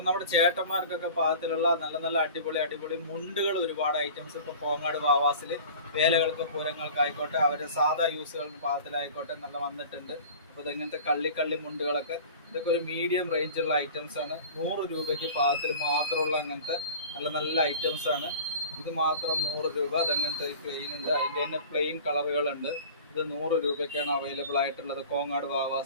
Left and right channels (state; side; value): inverted; both; correlation -0.41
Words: നമ്മുടെ ചേട്ടന്മാർക്കൊക്കെ പാകത്തിലുള്ള നല്ല നല്ല അടിപൊളി മുണ്ടുകൾ ഒരുപാട് ഐറ്റംസ് ഇപ്പോൾ കോങ്ങാട് വാവാസിൽ വേലകൾക്ക് പൂരങ്ങൾക്കായിക്കോട്ടെ അവരുടെ സാധാ യൂസുകളുടെ പാകത്തിലായിക്കോട്ടെ നല്ല വന്നിട്ടുണ്ട്. അപ്പോൾ ഇതെങ്ങനത്തെ കള്ളി മുണ്ടുകളൊക്കെ ഇതൊക്കെ ഒരു മീഡിയം റേഞ്ചുള്ള ഐറ്റംസ് ആണ്. 100 രൂപയ്ക്ക് പാകത്തിൽ മാത്രമുള്ള അങ്ങനത്തെ നല്ല നല്ല ഐറ്റംസ് ആണ്. ഇത് മാത്രം 100 രൂപ. അതങ്ങനത്തെ പ്ലെയിൻ ഉണ്ട്, അതിൻ്റെ തന്നെ പ്ലെയിൻ കളറുകളുണ്ട്. ഇത് 100 രൂപയ്ക്കാണ് അവൈലബിൾ ആയിട്ടുള്ളത് കോങ്ങാട്